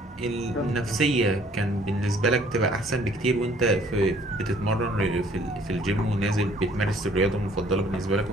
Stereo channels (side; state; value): both; normal; correlation 0.59